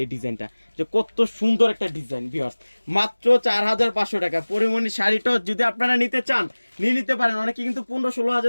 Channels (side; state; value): both; inverted; correlation -1.00